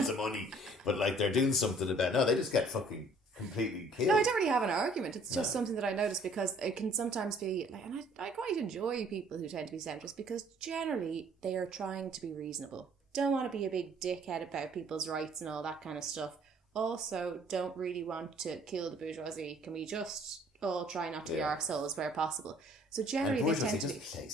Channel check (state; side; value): normal; both; correlation 0.57